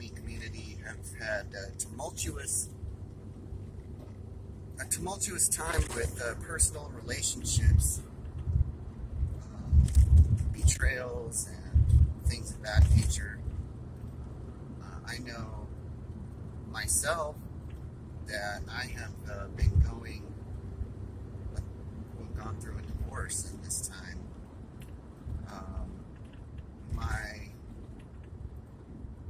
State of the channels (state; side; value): identical; both; correlation 1.00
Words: community have had a tumultuous time with personal relationships, betrayals, and things of that nature. I know myself that I have gone through a divorce in this time.